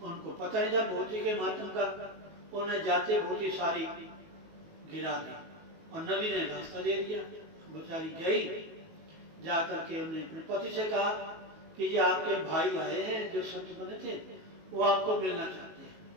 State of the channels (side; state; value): left; late; 19 ms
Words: उनको पता नहीं था भूती के मातम का, उन्हें जाते भूती सारी गिरा दी और नदी ने रास्ता दे दिया। बेचारी गई, जाकर के उन्हें अपने पति से कहा कि ये आपके भाई आए हैं जो संत बने थे, वो आपको मिलना चाहते हैं।